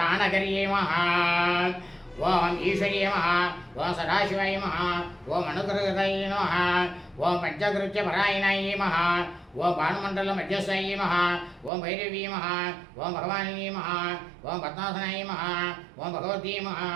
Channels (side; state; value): left; drops out; at 11.7 s